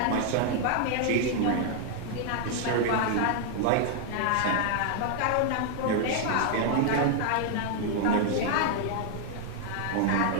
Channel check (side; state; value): both; different; correlation 0.00